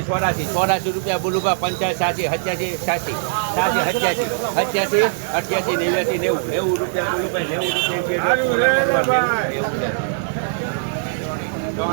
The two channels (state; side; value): silent; left; 65 dB below the other